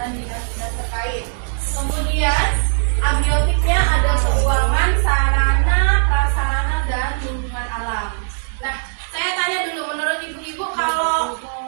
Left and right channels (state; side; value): silent; left; digital silence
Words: dinas-dinas terkait. Kemudian abiotiknya ada keuangan, sarana, prasarana, dan lingkungan alam. Nah, saya tanya dulu, menurut ibu-ibu, kalau